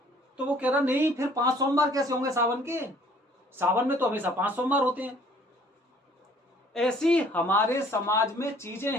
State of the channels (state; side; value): normal; both; correlation 0.57